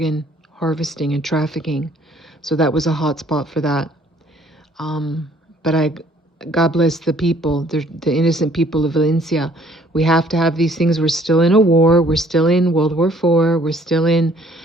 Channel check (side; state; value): both; normal; correlation 0.59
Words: harvesting and trafficking. So that was a hot spot for that. But God bless the people, the innocent people of Valencia. We have to have these things. We're still in a war. We're still in World War IV. We're still in